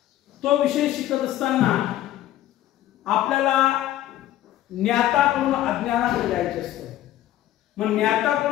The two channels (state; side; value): quieter; right; 13.5 dB